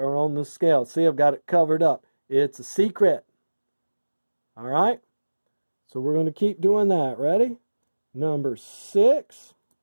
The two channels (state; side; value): inverted; both; correlation -1.00